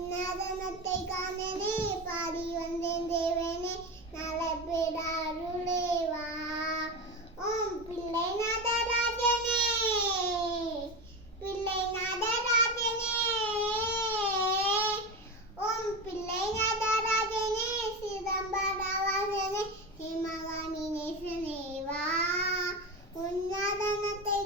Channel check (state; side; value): normal; both; correlation 0.21